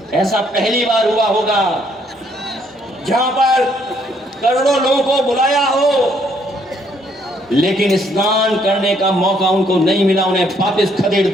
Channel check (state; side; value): normal; both; correlation 0.68